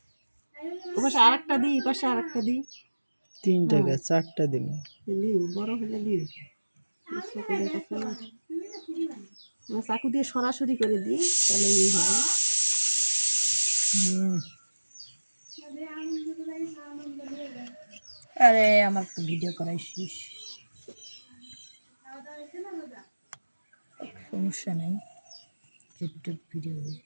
ওপাশে আরেকটা দি এপাশে আরেকটা দি তিনটা গাছ চারটা দিন দি বড় হলে দি চাকু দিয়ে সরাসরি করে দিই তাহলে এই হবে আরে আমার তো ভিডিও করাইছিস সমস্যা নাই ইউটিউব ভিডিও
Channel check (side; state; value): both; inverted; correlation -1.00